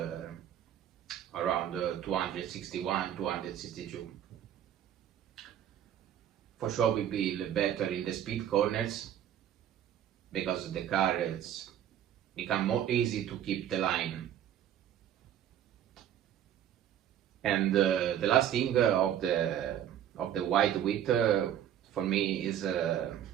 around 261, 262. For sure will be better in the speed corners, because the car is become more easy to keep the line. And the last thing of the wide width for me is,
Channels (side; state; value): left; quieter; 10.5 dB